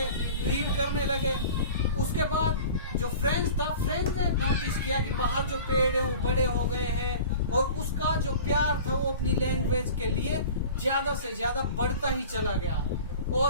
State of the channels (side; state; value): both; inverted; correlation -0.40